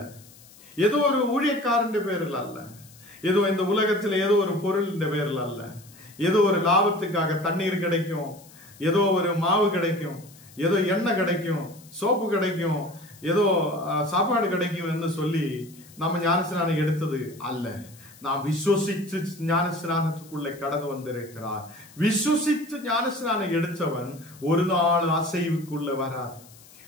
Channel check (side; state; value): left; noise; hiss, 23 dB below the sound